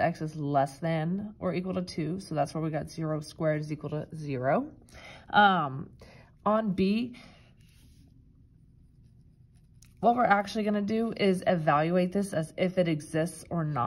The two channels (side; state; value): both; identical; correlation 1.00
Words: is less than or equal to 2. So that's where we got 0 squared is equal to 0. On B, what we're actually going to do is evaluate this as if it exists or